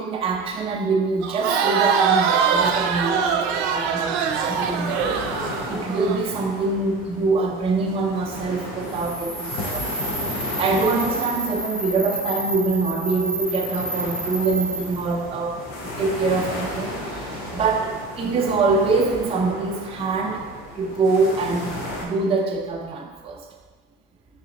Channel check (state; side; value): quieter; left; 3.6 dB